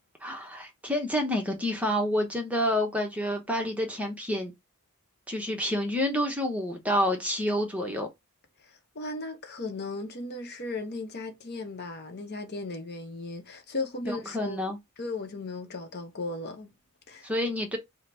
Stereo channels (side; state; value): both; normal; correlation 0.47